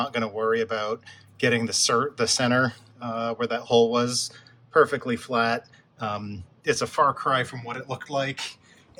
going to worry about getting the center where that hole was perfectly flat. It's a far cry from what it looked like,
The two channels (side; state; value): both; identical; correlation 1.00